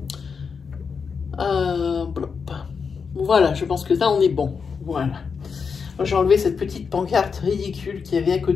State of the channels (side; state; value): right; quieter; 5.7 dB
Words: Voilà, je pense que là on est bon. Voilà. J'ai enlevé cette petite pancarte ridicule qu'il y avait à